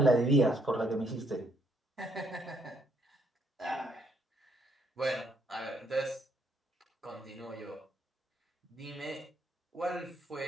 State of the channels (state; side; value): normal; both; correlation 0.70